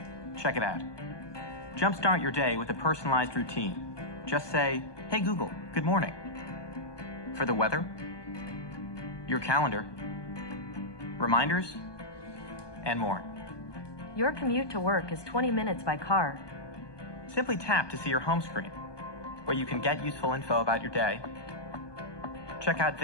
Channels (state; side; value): late; right; 1.2 ms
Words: Check it out. Jumpstart your day with a personalized routine. Just say, "Hey Google, good morning." For the weather, your calendar, reminders, and more. Your commute to work is 20 minutes by car. Simply tap to see your home screen, where you can get useful info about your day, check out